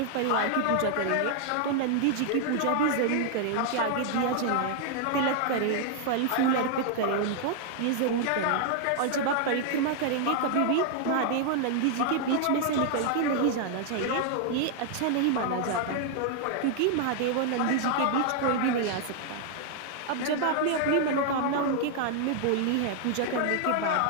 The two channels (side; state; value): both; different; correlation 0.00